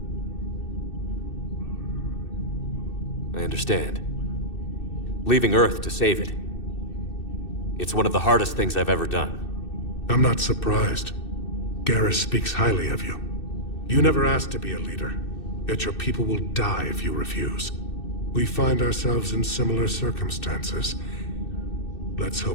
I understand. Leaving Earth to save it. It's one of the hardest things I've ever done. I'm not surprised. Garrus speaks highly of you. You never asked to be a leader, yet your people will die if you refuse. We find ourselves in similar circumstances. Let's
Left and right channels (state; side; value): late; right; 2.6 ms